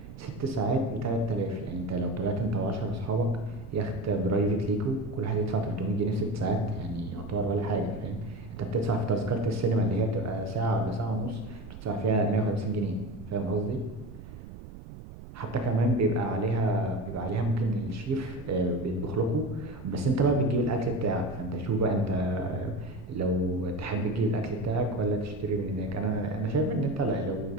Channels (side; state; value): right; noise; rumble, 14 dB below the sound